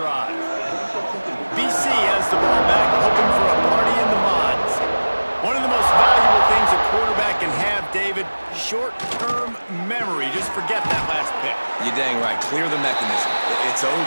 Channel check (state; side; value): inverted; both; correlation -1.00